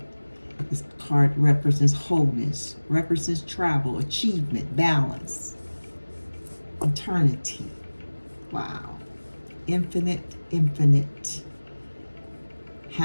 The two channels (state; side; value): inverted; both; correlation -1.00